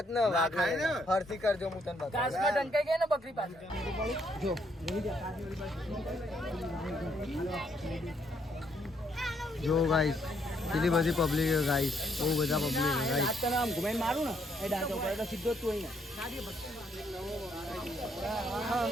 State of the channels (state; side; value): normal; both; correlation 0.71